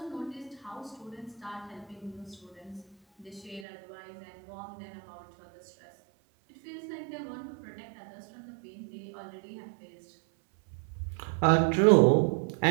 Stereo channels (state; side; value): drops out; left; at 3.7 s